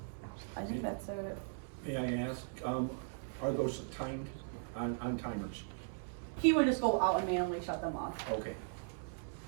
I think that's it. May I ask, are those timed on timers? He would just go out and manually shut them off, Okay.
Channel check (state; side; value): silent; left; 52 dB below the other